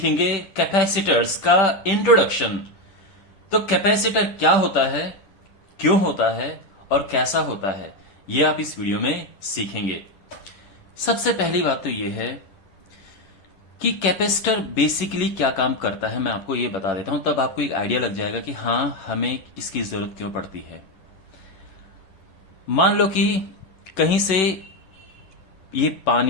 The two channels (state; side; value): late; right; 11 ms